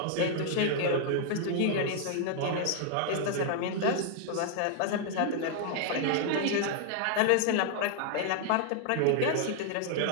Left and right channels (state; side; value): different; both; correlation 0.00